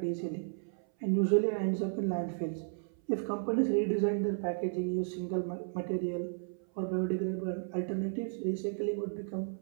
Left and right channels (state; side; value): silent; left; 55 dB below the other